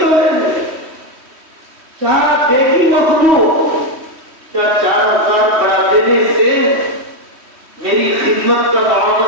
توڑیں گے۔ کیا دیکھی مخلوق، کیا 4000 بڑھا دینے سے میری خدمت کا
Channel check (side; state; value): left; late; 3.1 ms